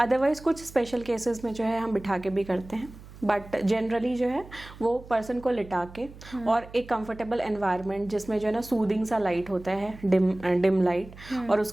कुछ स्पेशल केसेस में जो है हम बिठा के भी करते हैं, बट जनरली जो है वो पर्सन को लिटा के और एक कंफर्टेबल एनवायरनमेंट जिसमें जो है ना सूदिंग सा लाइट होता है, डिम लाइट, और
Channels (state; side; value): noise; right; hum, 18 dB below the sound